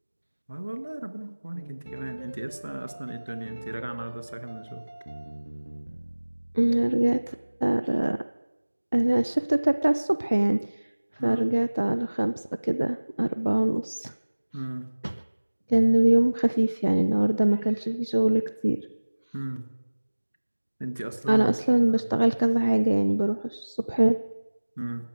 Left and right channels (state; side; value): inverted; both; correlation -1.00